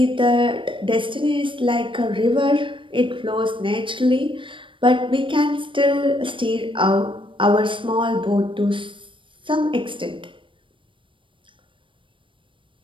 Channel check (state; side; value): late; left; 0.25 ms